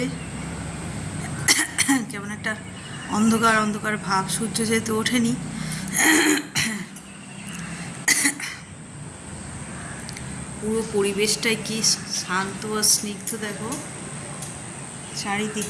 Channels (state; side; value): identical; both; correlation 1.00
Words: কেমন একটা অন্ধকার অন্ধকার ভাব, সূর্য যেহেতু ওঠেনি। পুরো পরিবেশটাই কি শান্ত আর স্নিগ্ধ, দেখো